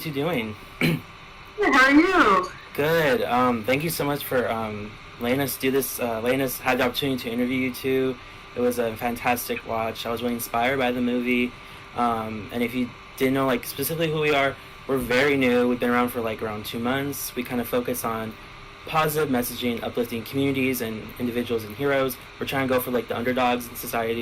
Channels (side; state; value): both; identical; correlation 1.00